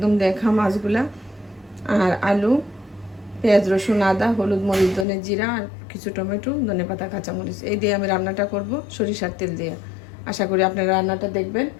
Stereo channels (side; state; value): right; drops out; at 5.1 s